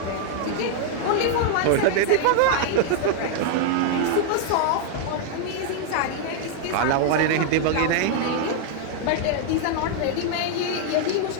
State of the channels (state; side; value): different; both; correlation 0.00